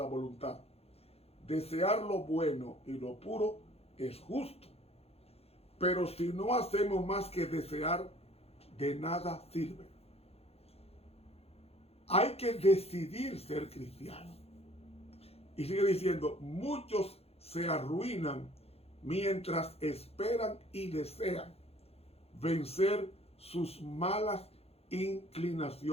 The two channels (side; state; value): right; late; 0.29 ms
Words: voluntad. Desear lo bueno y lo puro es justo. Pero si no hacemos más que desear, de nada sirve. Hay que decidir ser cristiano. Y sigue diciendo, muchos se arruinan mientras esperan y desean vencer sus malas